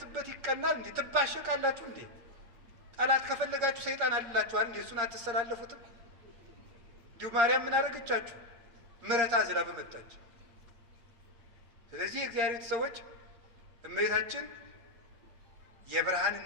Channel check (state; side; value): late; left; 8.6 ms